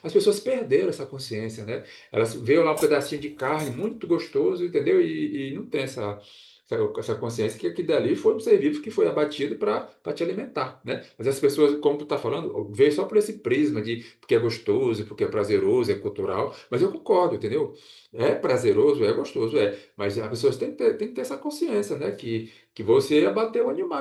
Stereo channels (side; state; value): both; identical; correlation 1.00